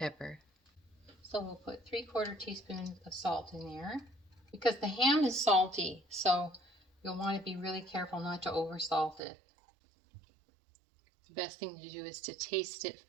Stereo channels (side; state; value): left; drops out; at 9.2 s